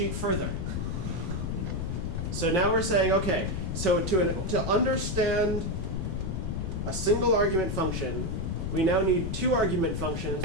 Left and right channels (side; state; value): left; noise; rumble, 3 dB below the sound